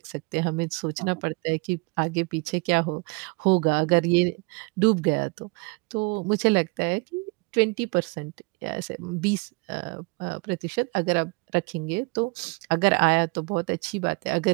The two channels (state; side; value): quieter; left; 29.8 dB